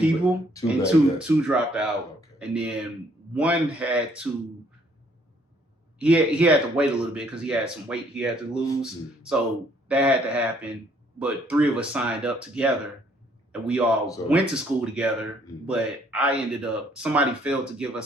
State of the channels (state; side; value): normal; both; correlation 0.65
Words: and two dropped out, and then one had to. He had to wait a little bit because he had some weight he had to lose. So that had to happen. But 3 of us signed up together, and we all went to school together. But I ended up, somebody failed to give